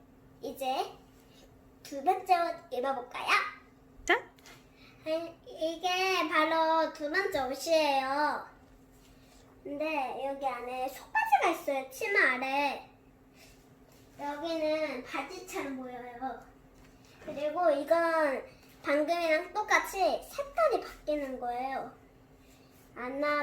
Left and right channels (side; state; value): both; identical; correlation 1.00